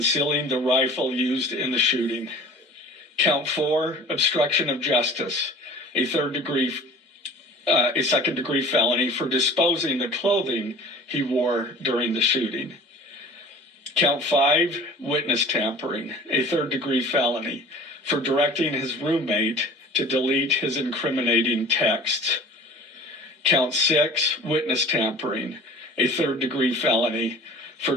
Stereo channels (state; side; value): normal; both; correlation 0.43